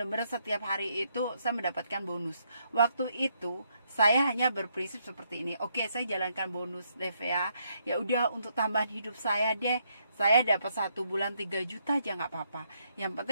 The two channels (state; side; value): inverted; both; correlation -0.75